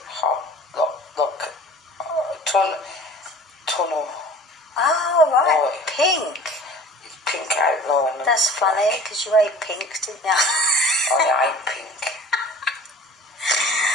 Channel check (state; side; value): normal; both; correlation 0.43